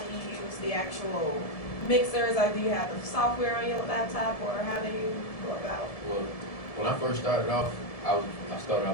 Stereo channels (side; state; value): right; late; 1.7 ms